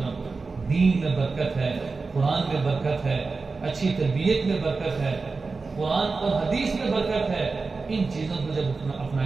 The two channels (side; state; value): left; quieter; 4.2 dB